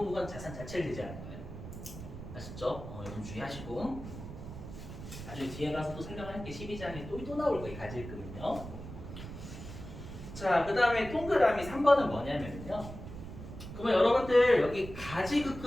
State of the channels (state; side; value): noise; right; rumble, 11 dB below the sound